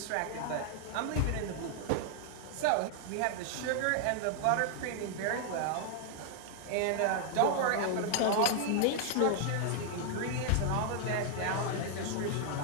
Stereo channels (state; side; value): different; both; correlation 0.00